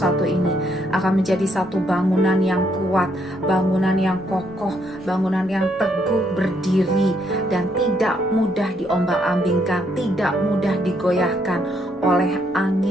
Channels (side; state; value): both; normal; correlation 0.72